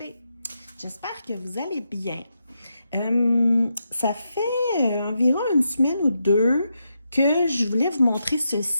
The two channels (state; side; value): inverted; both; correlation -0.84